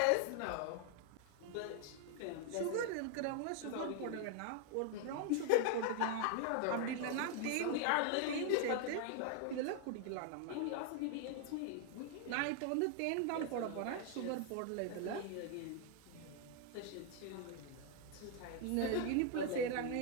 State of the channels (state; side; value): different; both; correlation 0.00